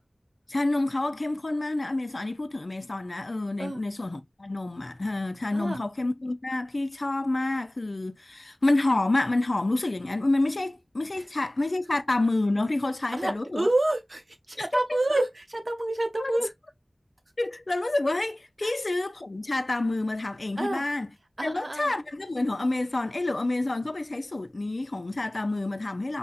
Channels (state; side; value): normal; both; correlation 0.98